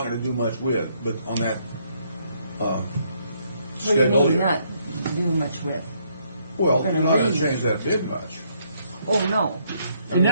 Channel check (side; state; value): both; inverted; correlation -0.71